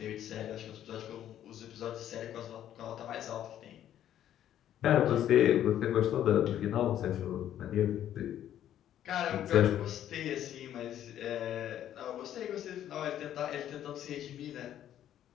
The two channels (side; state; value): right; quieter; 11.2 dB